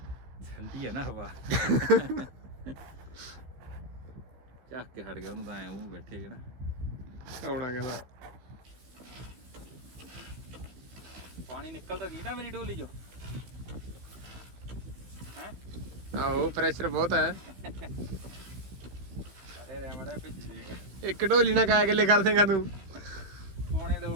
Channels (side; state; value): left; late; 15 ms